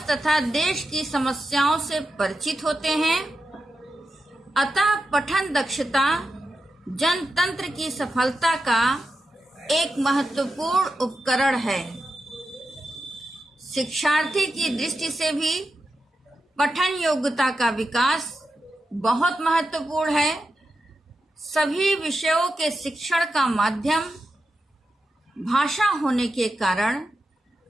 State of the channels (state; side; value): normal; both; correlation 0.89